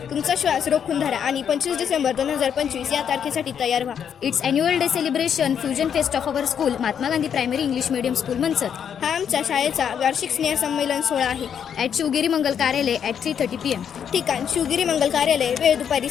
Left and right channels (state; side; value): quieter; right; 8.1 dB